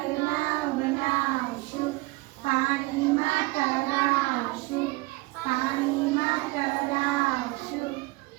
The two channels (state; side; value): quieter; left; 23.0 dB